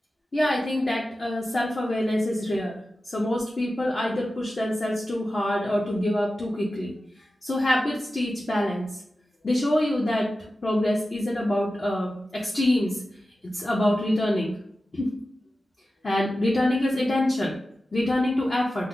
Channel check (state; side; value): normal; both; correlation 0.94